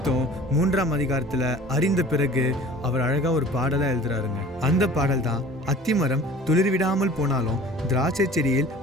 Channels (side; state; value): both; normal; correlation 0.45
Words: 3ஆம் அதிகாரத்துல அறிந்த பிறகு அவர் அழகா ஒரு பாடலா எழுதுறாருங்க. அந்த பாடல் தான் அத்திமரம் துளிர்விடாமல் போனாலும் திராட்சை செடியில்